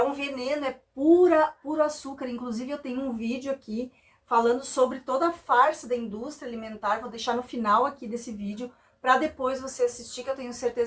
um veneno, é puro açúcar. Inclusive eu tenho um vídeo aqui falando sobre toda a farsa da indústria alimentar. Vou deixar no final aqui desse vídeo para depois você assistir, que eu tenho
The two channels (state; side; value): identical; both; correlation 1.00